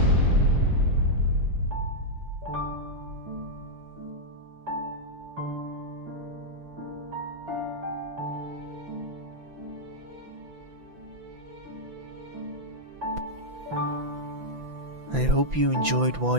I hope you enjoyed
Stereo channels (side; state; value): left; late; 5.9 ms